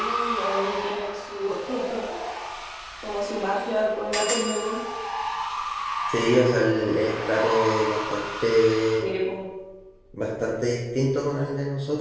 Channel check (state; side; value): identical; both; correlation 1.00